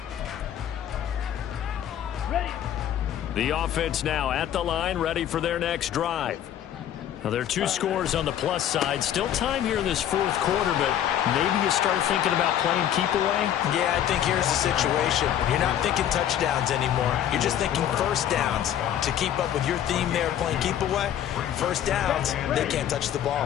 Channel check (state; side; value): quieter; right; 10.6 dB